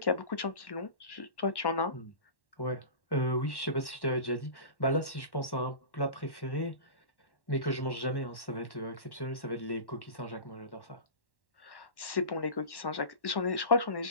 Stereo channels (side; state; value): right; late; 1.1 ms